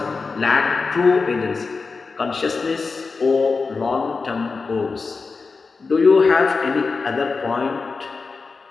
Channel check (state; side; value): quieter; right; 4.4 dB